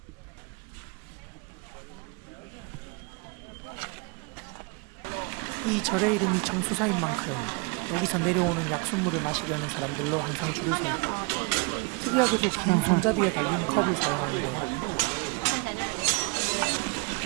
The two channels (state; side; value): quieter; left; 30.4 dB